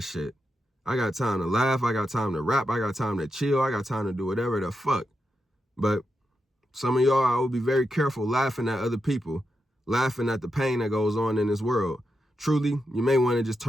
shit. I got time to laugh. I got time to rap. I got time to chill. I got time to do whatever the fuck. But some of y'all, I will be very careful laughing at other people, laughing at the pain that goes on in this world. Truly, you may want to just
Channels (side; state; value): both; normal; correlation 0.87